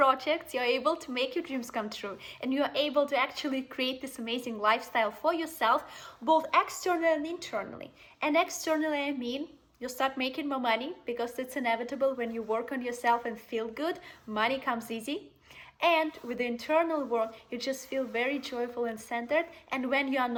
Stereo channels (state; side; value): identical; both; correlation 1.00